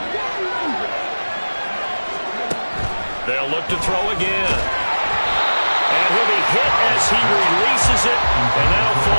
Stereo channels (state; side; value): inverted; both; correlation -1.00